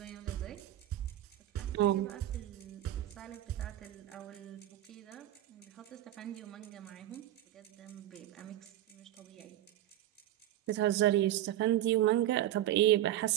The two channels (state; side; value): quieter; left; 13.2 dB